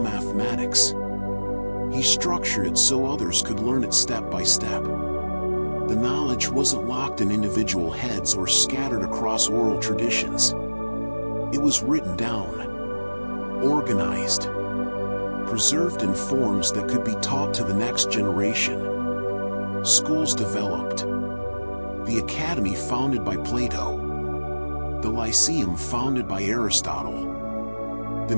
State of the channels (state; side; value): inverted; both; correlation -1.00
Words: He structured it so others could learn it step by step. The knowledge wasn't locked in individual heads or scattered across oral traditions. It was written down, organized, preserved in forms that could be taught to the next generation. Schools developed. The Academy founded by Plato, the Lyceum founded by Aristotle, the